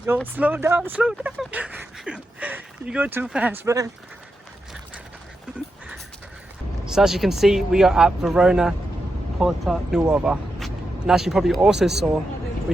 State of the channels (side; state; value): both; normal; correlation 0.86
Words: Yo, slow down, slow down. You go too fast, man. So as you can see, we are at Verona Porta Nuova. And as you probably also saw,